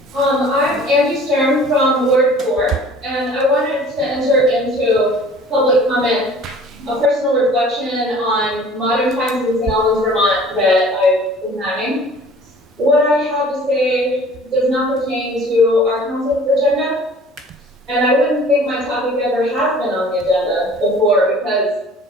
I'm Angie Stern from Ward 4, and I wanted to enter into public comment, a personal reflection on modern times in St. Albans, Vermont that I've been having. What I have to say does not pertain to our council's agenda, and I wouldn't think my topic ever has been on the agenda before because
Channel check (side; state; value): both; normal; correlation 0.49